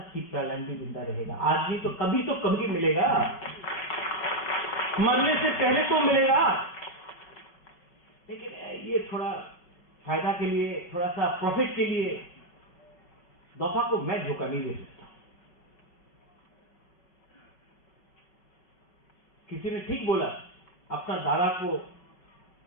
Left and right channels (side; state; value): right; late; 5.6 ms